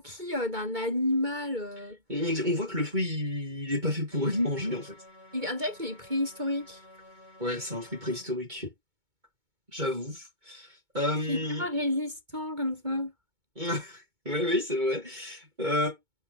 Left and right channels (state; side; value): late; left; 2.2 ms